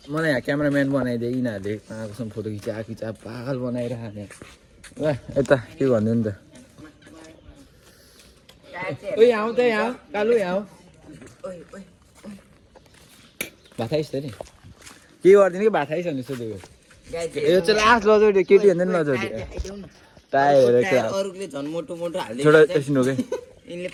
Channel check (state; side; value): identical; both; correlation 1.00